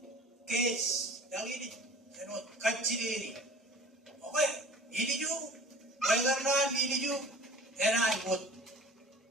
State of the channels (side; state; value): both; normal; correlation 0.43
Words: kes, lagi ni anu kacil ini. Oke, ini juga. Karena ini juga enak pot.